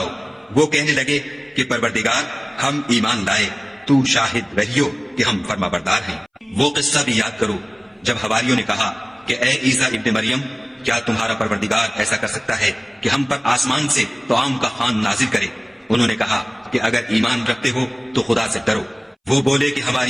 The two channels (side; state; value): both; identical; correlation 1.00